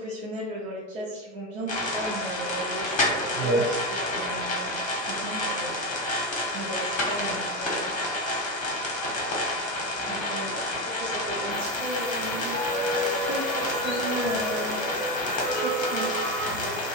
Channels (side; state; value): both; normal; correlation 0.14